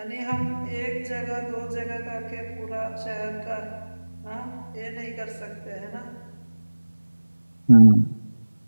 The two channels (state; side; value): inverted; both; correlation -1.00